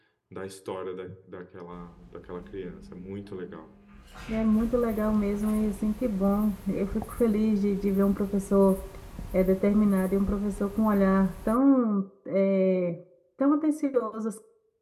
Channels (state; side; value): identical; both; correlation 1.00